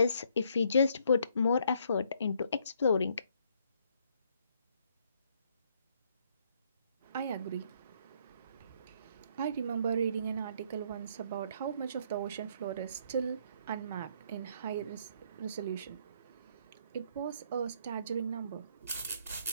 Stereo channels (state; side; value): inverted; both; correlation -0.68